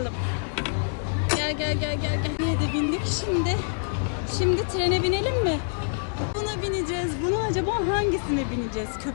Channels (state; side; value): silent; right; digital silence